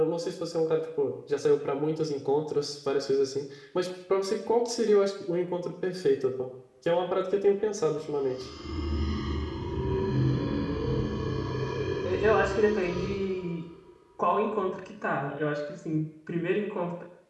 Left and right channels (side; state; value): both; identical; correlation 1.00